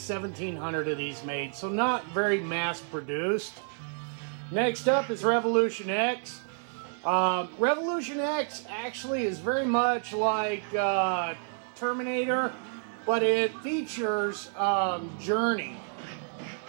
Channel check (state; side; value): silent; left; 58 dB below the other